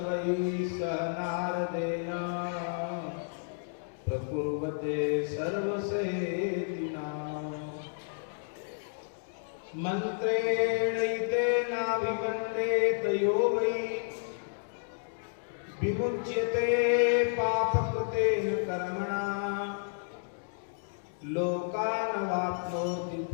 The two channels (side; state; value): right; silent; digital silence